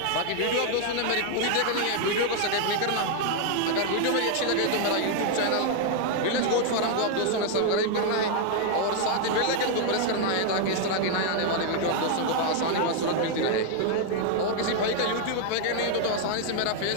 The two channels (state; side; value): different; both; correlation 0.00